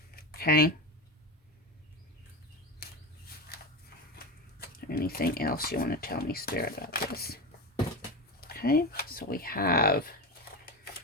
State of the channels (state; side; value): normal; both; correlation 0.21